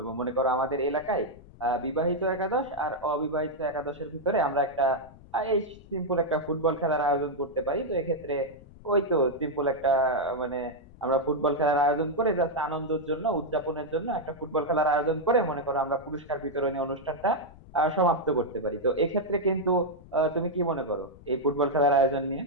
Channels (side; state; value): left; noise; rumble, 21 dB below the sound